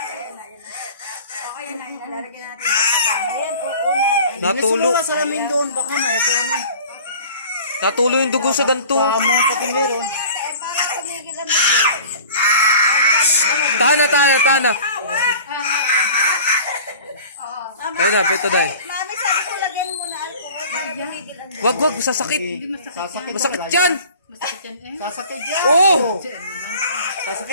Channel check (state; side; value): inverted; both; correlation -0.44